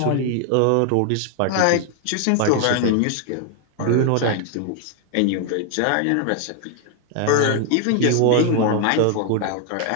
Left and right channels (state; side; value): different; both; correlation 0.00